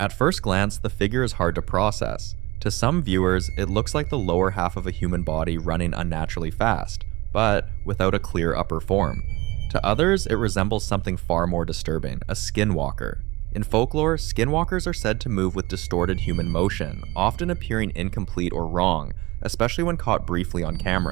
first glance, the figure is hard to process. To some viewers, it looks like the lower half of a human body running unnaturally fast, but without a clear upper form. To others, it resembles something far more disturbing, a skinwalker. In folklore, skinwalkers are said to move with distorted human motion, often appearing incomplete or wrong, especially when caught briefly on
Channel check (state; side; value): quieter; left; 20.5 dB